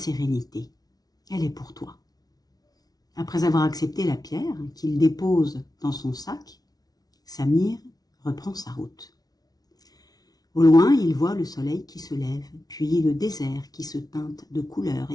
Elle est pour toi. » Après avoir accepté la pierre qu'il dépose dans son sac, Samir reprend sa route. Au loin, il voit le soleil qui se lève, puis le désert qui se teinte de couleurs,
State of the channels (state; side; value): late; right; 0.19 ms